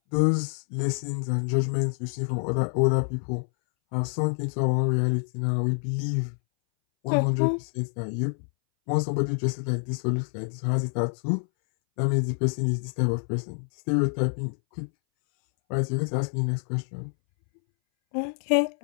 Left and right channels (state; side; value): silent; right; 60 dB below the other